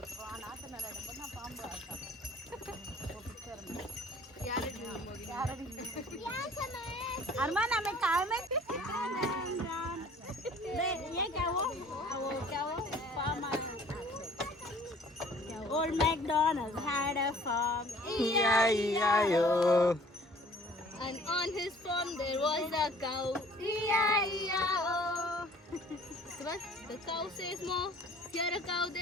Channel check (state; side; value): normal; both; correlation 0.52